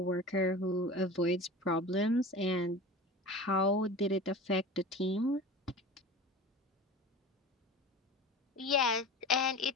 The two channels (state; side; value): normal; both; correlation 0.34